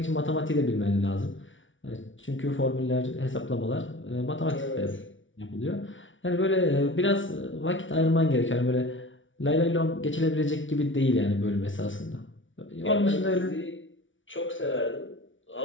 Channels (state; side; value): late; right; 0.56 ms